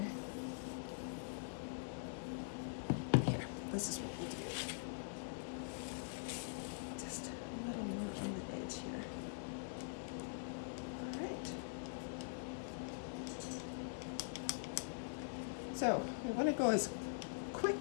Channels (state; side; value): silent; right; digital silence